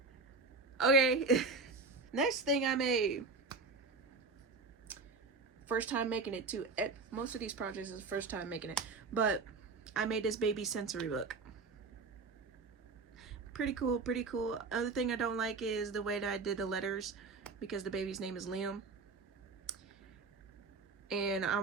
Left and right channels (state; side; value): quieter; left; 4.0 dB